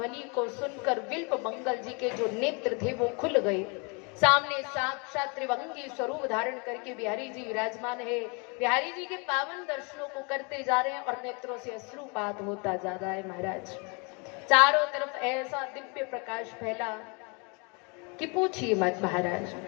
को सुनकर बिल्व मंगल जी के जो नेत्र थे वो खुल गए। सामने साक्षात त्रिभंगी स्वरूप धारण करके बिहारी जी विराजमान है। बिहारी जी के पावन दर्शनों को करते जा रहे हैं और नेत्रों से अश्रुपात होता जा रहा है महाराज। चारों तरफ ऐसा दिव्य प्रकाश फैला कि पूछिए मत महाराज।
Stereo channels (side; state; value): right; quieter; 32.5 dB